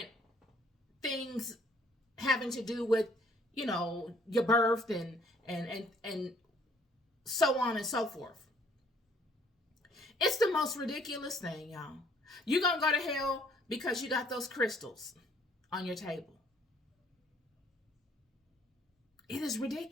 things having to do with, your birth and so on and so forth. It's the most ridiculous thing, y'all. You're gonna go to hell because you got those crystals on your table. It is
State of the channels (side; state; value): both; normal; correlation 0.62